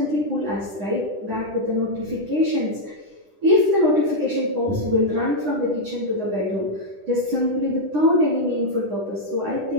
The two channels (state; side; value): late; left; 10 ms